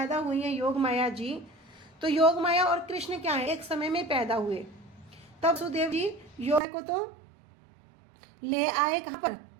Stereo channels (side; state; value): left; drops out; at 6.6 s